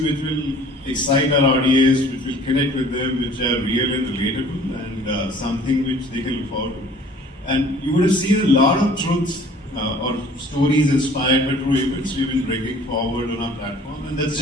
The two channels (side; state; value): both; normal; correlation 0.51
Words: which will excite our audience, which will connect with them, which are real and relatable, and something which they can look forward to. And you would have seen a lot of truths or stories inspired by true events we've been bringing forward on our platform, and that's